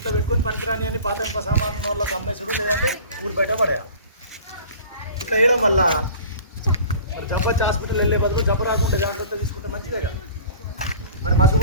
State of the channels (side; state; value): both; inverted; correlation -0.43